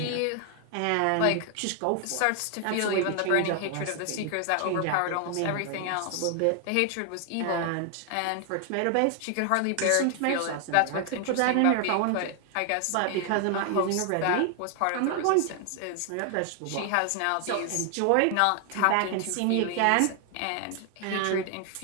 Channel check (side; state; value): both; different; correlation 0.00